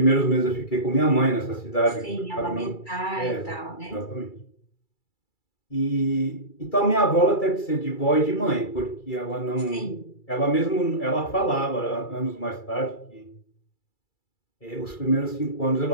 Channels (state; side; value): late; right; 2.3 ms